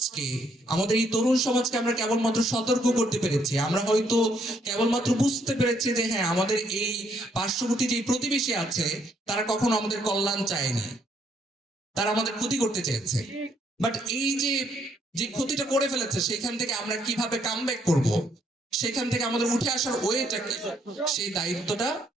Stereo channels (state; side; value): normal; both; correlation 0.71